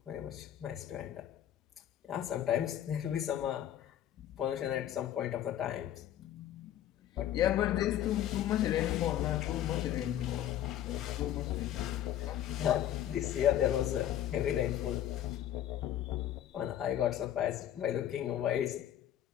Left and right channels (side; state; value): right; quieter; 11.5 dB